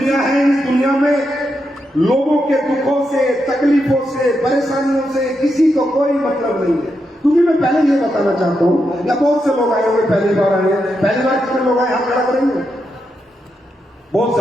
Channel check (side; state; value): both; normal; correlation 0.84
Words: है। इस दुनिया में लोगों के दुखों से, तकलीफों से, परेशानियों से किसी को कोई मतलब नहीं है। क्योंकि मैं पहले ये बताना चाहता हूं, या बहुत से लोग आए होंगे, पहली बार आए हैं, पहली बार कितने लोग आए, हाथ खड़ा करेंगे? बहुत